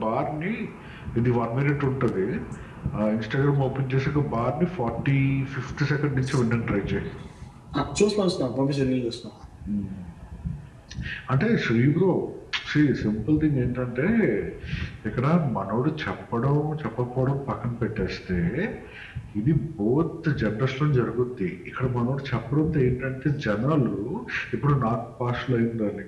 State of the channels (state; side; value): identical; both; correlation 1.00